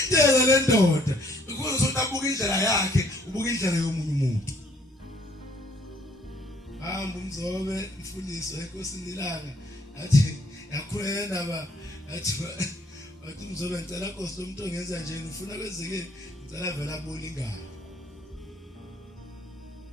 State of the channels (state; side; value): normal; both; correlation 0.63